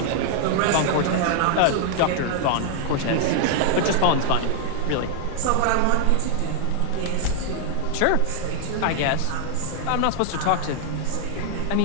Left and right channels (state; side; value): different; both; correlation 0.00